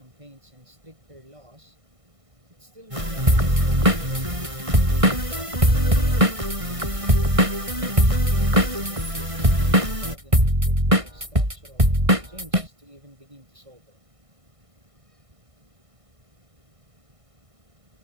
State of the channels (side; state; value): left; late; 1.6 ms